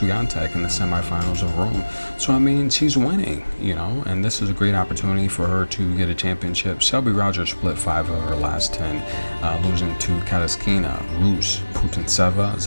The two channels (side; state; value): both; inverted; correlation -1.00